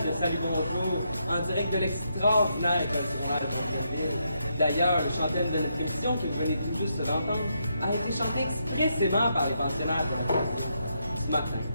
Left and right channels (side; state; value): both; inverted; correlation -0.80